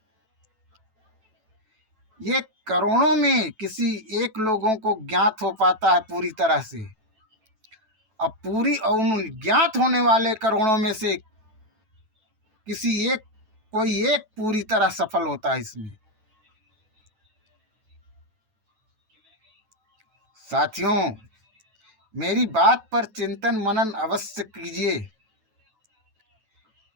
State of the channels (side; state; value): left; late; 9.1 ms